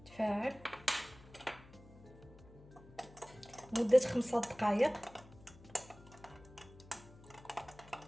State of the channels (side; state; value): left; noise; hum, 21 dB below the sound